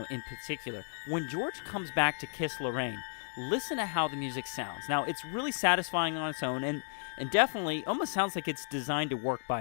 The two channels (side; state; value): right; silent; 56 dB below the other